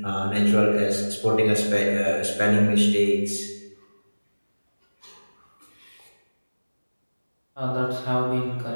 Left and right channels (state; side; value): inverted; both; correlation -1.00